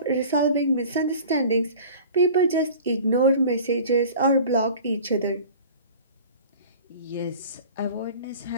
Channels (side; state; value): both; inverted; correlation -0.42